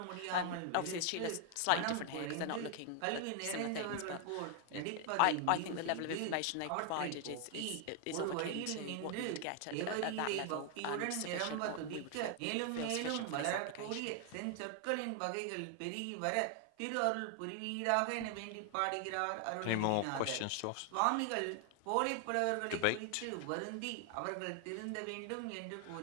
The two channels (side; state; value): both; different; correlation 0.00